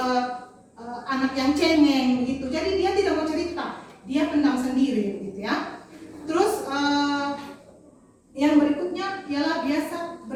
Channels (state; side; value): identical; both; correlation 1.00